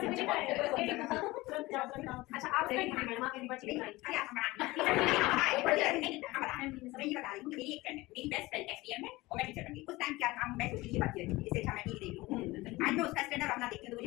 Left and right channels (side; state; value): right; quieter; 20.3 dB